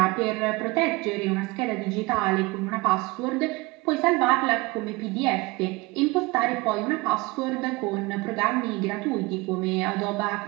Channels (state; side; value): quieter; left; 23.7 dB